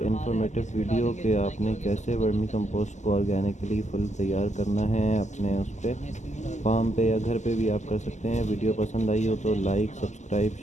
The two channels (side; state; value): right; late; 0.34 ms